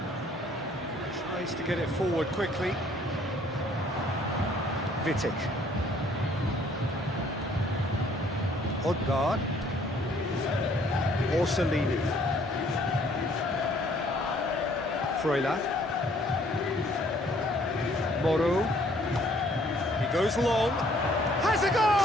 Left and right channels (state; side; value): normal; both; correlation 0.61